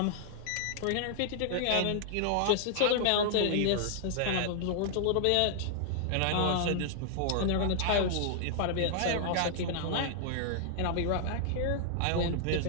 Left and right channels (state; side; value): different; both; correlation -0.01